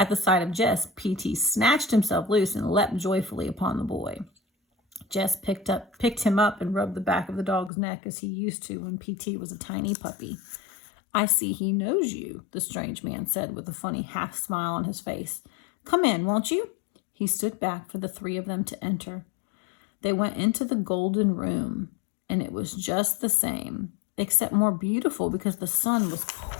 the sight of Jess, P.T. snatched himself loose and leapt joyfully upon the boy. Jess picked him up and rubbed the back of the dog's neck as he used to when P.T. was a tiny puppy. "I see he knows you," the strange man said with a funny half smile on his face. "Come in, won't you?" He stood back for the 3 of them to enter. They went into the golden room, and it was just the same, except more beautiful because the sun was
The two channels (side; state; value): right; drops out; at 7.7 s